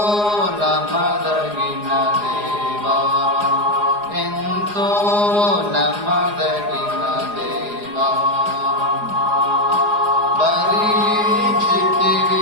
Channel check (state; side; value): late; left; 4.8 ms